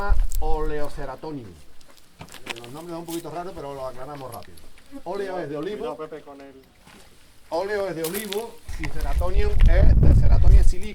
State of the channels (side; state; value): both; identical; correlation 1.00